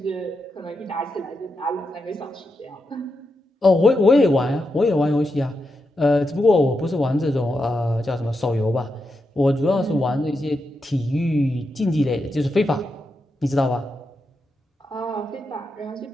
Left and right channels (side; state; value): both; normal; correlation 0.86